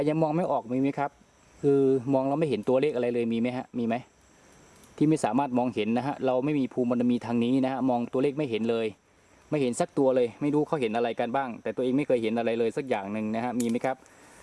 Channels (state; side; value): identical; both; correlation 1.00